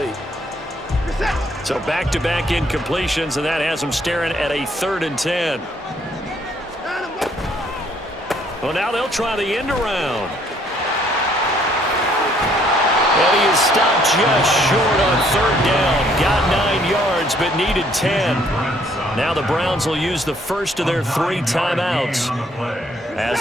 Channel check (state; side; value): normal; both; correlation 0.65